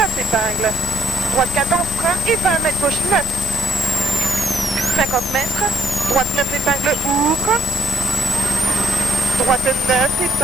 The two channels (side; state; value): both; normal; correlation 0.70